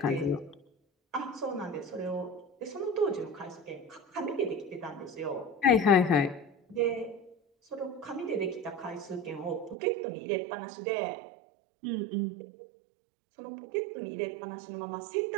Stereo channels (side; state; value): left; drops out; at 9.8 s